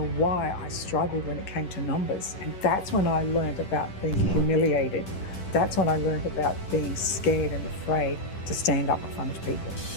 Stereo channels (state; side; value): late; right; 10 ms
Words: why I struggled when it came to numbers. And that's when I learned about being humiliated. That's when I learned about being scared and afraid to stand up in front of people.